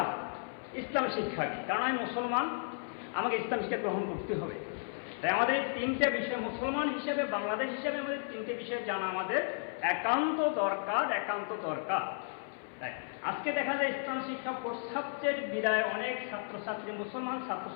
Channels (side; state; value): right; silent; 55 dB below the other